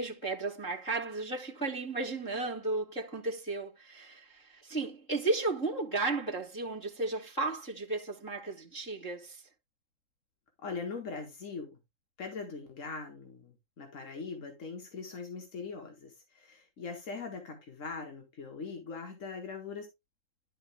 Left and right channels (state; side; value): late; right; 3.7 ms